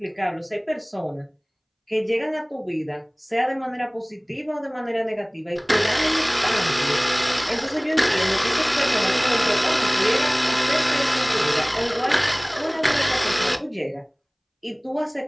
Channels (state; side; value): identical; both; correlation 1.00